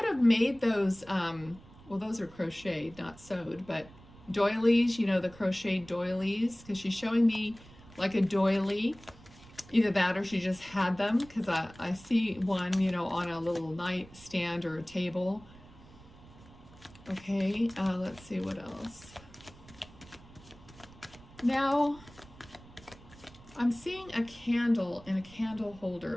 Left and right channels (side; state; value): right; noise; rumble, 22 dB below the sound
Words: have made those, well, those are crocheted, not sewed, but doilies, you know, the crocheted doilies, because she's showing me like a doily. Either that or she just had them, because I see one, you know, on a little nightstand or a table. Okay, let's see what else. Now, I'm seeing a candle in a candle